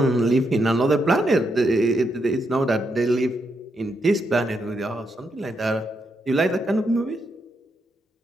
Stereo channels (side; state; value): both; normal; correlation 0.81